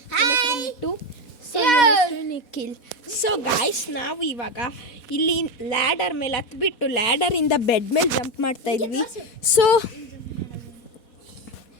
ಇವನ ಹೆಸರು ಮಿಟ್ಟು, ಸೊ ಇವನ ಹೆಸರು ನಿಖಿಲ್. ಸೊ ಗೈಸ್, ನಾವು ಇವಾಗ ಇಲ್ಲಿ ಲ್ಯಾಡರ್ ಮೇಲೆ ಹತ್ಬಿಟ್ಟು ಲ್ಯಾಡರಿಂದ ಬೆಡ್ ಮೇಲೆ ಜಂಪ್ ಮಾಡ್ತಾ ಇದ್ವಿ. ಸೊ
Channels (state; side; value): late; right; 4.2 ms